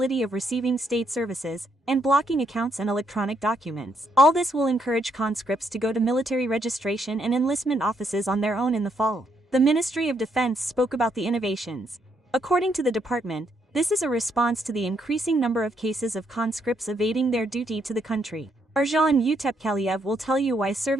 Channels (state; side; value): normal; both; correlation 0.74